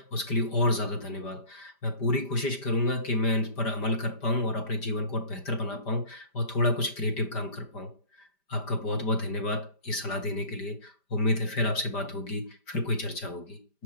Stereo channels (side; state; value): right; late; 5.0 ms